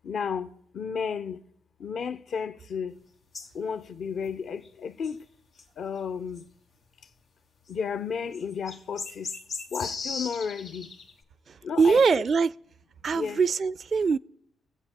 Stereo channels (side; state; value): both; normal; correlation 0.82